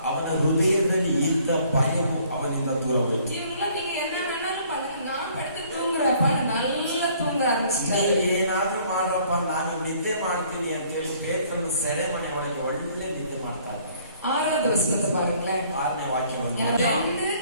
ಅವನ ಹೃದಯದಲ್ಲಿ ಇದ್ದ ಭಯವು ಅವನಿಂದ ದೂರ ಹೋಯಿತು. ಇವ್ರನ್ನ நீங்க என்ன வேணாலும் பண்ணுங்க, நான் படுத்து தூங்குறப்ப நல்லா தூங்க ಆರಂಭಿಸಿದ್ದಾರೆ. ಏನಾದ್ರೂ ಮಾಡ್ರಪ್ಪ, ನಾನು ನಿದ್ದೆ ಮಾಡ್ತೀನಿ ಅಂತ ಹೇಳಿ ಪೇತ್ರನ ಸೆರೆಮನೆ ಒಳಗೆ ಒಳ್ಳೆ ನಿದ್ದೆ ಮಾಡ್ತಾ ಇದ್ದಾರೆ. 6வது ವಚನத்தை பாருங்களேன். 6ನೇ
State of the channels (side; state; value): both; inverted; correlation -0.59